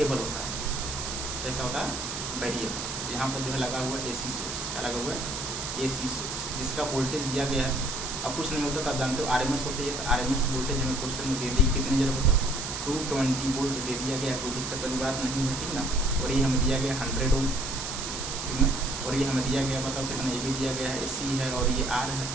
होता है, कैसा होता है वेरिएबल। यहाँ पर जो है लगा हुआ है एसी सोर्स, क्या लगा हुआ है एसी सोर्स, जिसका वोल्टेज दिया गया है। अब कुछ नहीं होता तो आप जानते हो आरएमएस होती है, तो आरएमएस वोल्टेज हमें क्वेश्चन में दे दी कितनी जरा बताओ 220 वोल्ट दे दिया गया, कोई दिक्कत वाली बात नहीं है, ठीक ना, और ये हमें दिया गया 100 ओम, ठीक ना, और ये हमें दिया गया बताओ कितना, ये भी दिया गया है सी है और ये आर है।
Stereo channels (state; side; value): noise; right; hiss, 5 dB below the sound